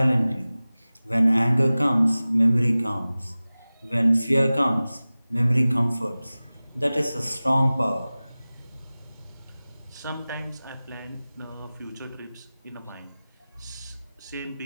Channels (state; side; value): inverted; both; correlation -0.98